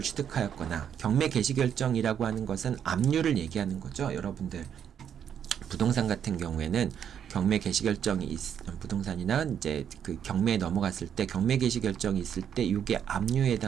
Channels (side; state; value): left; quieter; 8.6 dB